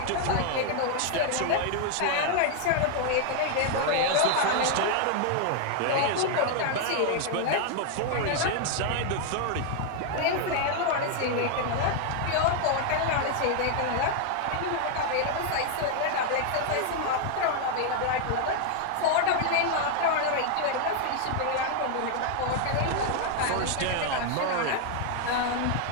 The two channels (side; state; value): both; different; correlation 0.00